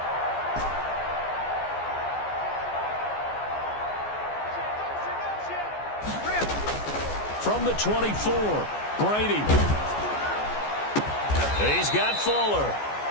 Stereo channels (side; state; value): right; late; 14 ms